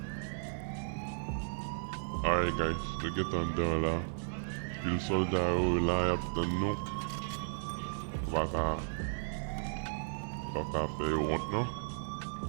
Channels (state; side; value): silent; left; digital silence